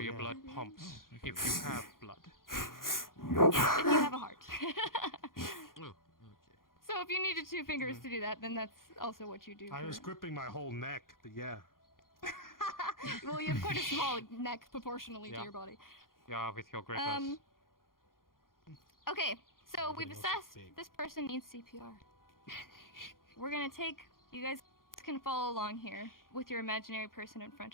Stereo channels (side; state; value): right; late; 0.91 ms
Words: your blood pumps, if you have blood. If you have a heart. Oh, okay. So if you needed 2 fingers to do that, then that's also what you do. I was gripping my whole neck, but yeah. Well, you have quite a small neck proportionally to your body. Yeah, with your grippers. Okay, so we've assessed this person needs CPR. We're gonna take, you guys can follow along here with your imaginary person in